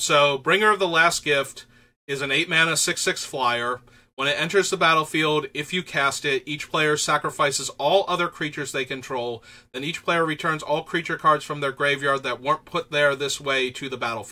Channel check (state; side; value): identical; both; correlation 1.00